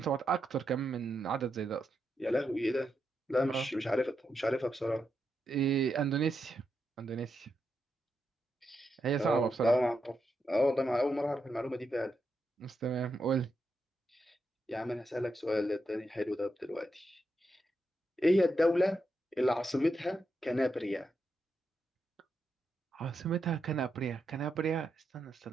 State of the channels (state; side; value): normal; both; correlation 0.84